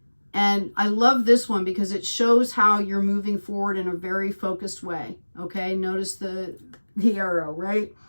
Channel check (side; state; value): both; inverted; correlation -1.00